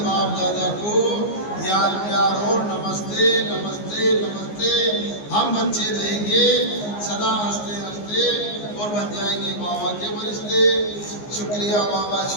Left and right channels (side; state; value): right; late; 14 ms